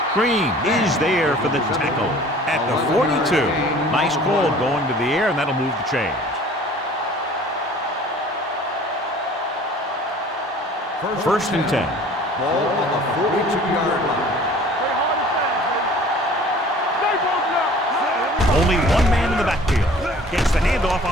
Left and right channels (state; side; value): normal; both; correlation 0.48